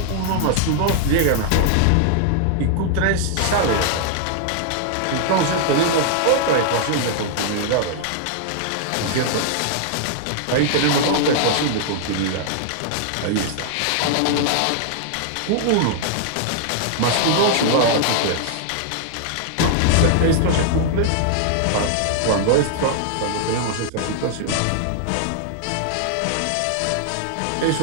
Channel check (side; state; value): both; different; correlation -0.01